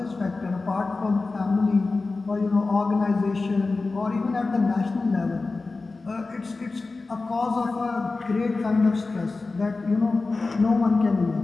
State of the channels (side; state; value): right; quieter; 3.7 dB